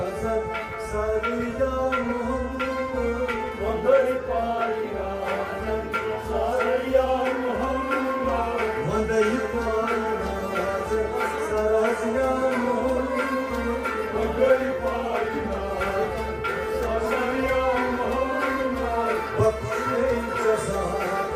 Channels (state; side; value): identical; both; correlation 1.00